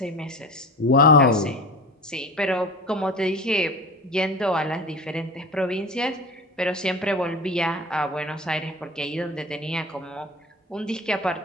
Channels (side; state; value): both; normal; correlation 0.33